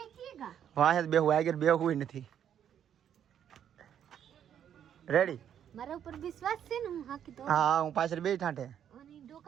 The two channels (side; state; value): left; quieter; 9.4 dB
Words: વાહે બેહું આગળ બેહું નથી રેડી મારા ઉપર વિશ્વાસ છે ને હું હાકી તો હા હું પાછળ બે ઠાઠે અને